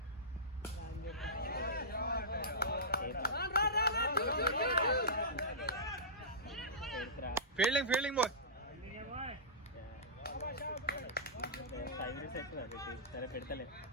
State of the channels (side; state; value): both; normal; correlation -0.18